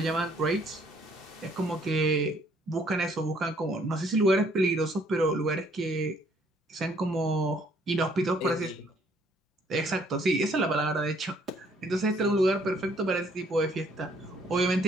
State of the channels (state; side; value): normal; both; correlation 0.64